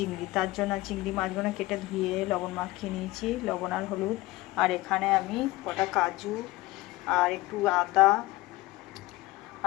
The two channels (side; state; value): right; quieter; 18.9 dB